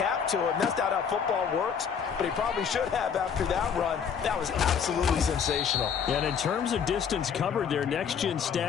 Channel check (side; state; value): right; quieter; 7.1 dB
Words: to him. That's not how football works, but he probably should have after that run. That was absolutely sensational. And in terms of distance covered, their next-gen